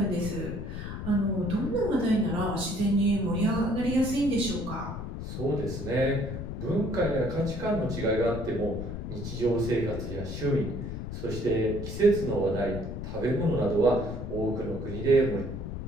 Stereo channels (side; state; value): left; noise; rumble, 6 dB below the sound